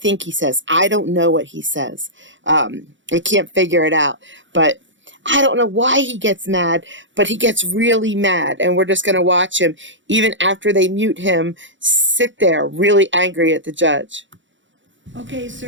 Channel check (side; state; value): left; late; 0.55 ms